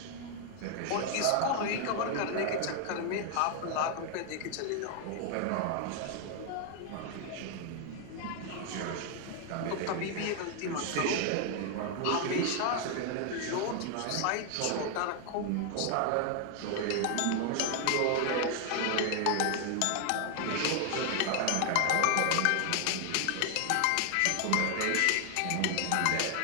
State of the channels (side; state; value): both; different; correlation 0.00